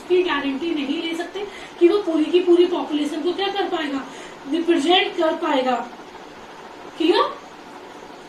गारंटी नहीं ले सकते कि वो पूरी की पूरी पॉपुलेशन को क्या कर पाएगा, रिप्रेजेंट कर पाएगा। Clear?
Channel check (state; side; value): identical; both; correlation 1.00